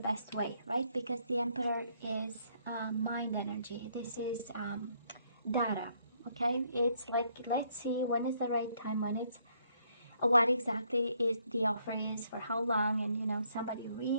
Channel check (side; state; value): both; inverted; correlation -0.69